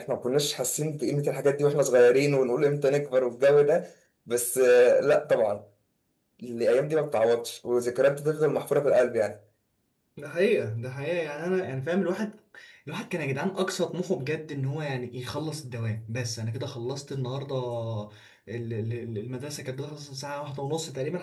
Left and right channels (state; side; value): identical; both; correlation 1.00